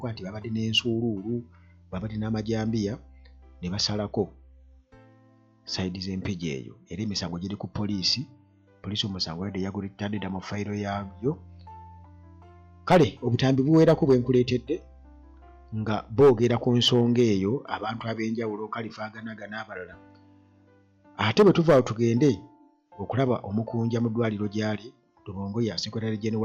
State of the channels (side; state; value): both; identical; correlation 1.00